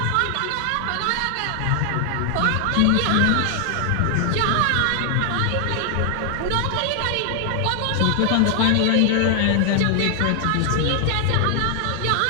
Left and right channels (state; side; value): different; both; correlation 0.00